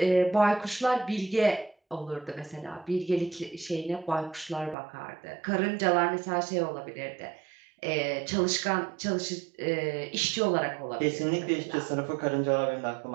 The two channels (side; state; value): left; drops out; at 4.8 s